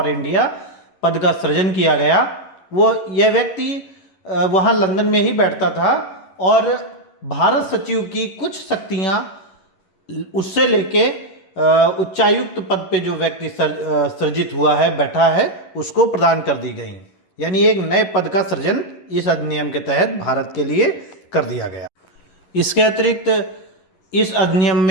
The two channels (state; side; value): late; right; 11 ms